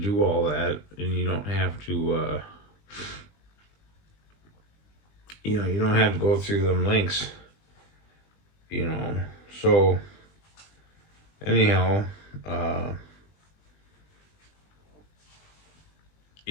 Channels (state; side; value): late; right; 20 ms